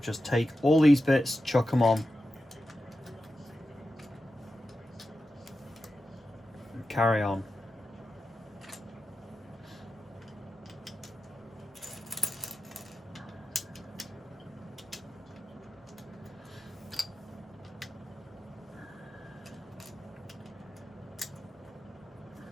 just take all these bits, chuck them on. And carry on.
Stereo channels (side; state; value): both; normal; correlation 0.91